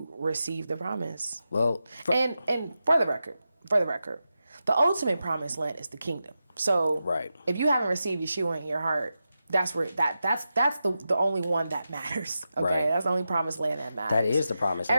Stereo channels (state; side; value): inverted; both; correlation -0.90